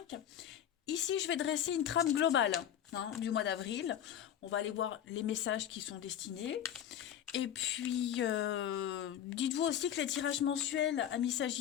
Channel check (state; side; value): quieter; right; 10.2 dB